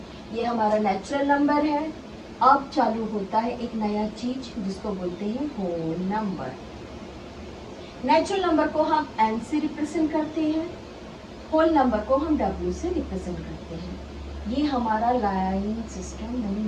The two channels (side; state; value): both; identical; correlation 1.00